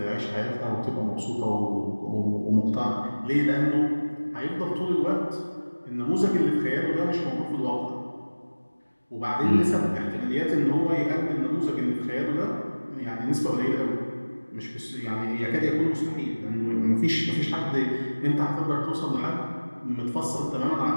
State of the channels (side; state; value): both; inverted; correlation -1.00